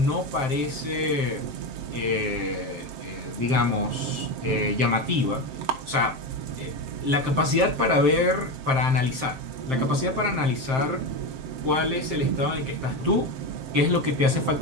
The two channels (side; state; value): left; late; 7.6 ms